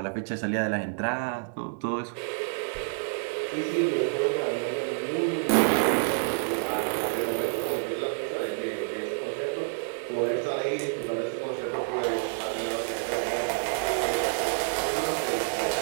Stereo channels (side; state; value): left; silent; digital silence